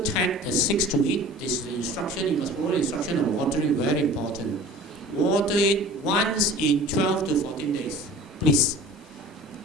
tag that sticks to it. This is the instruction, you must follow the instruction of watering, very important. Water it once in 12 to 14 days, please.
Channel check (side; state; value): both; normal; correlation 0.43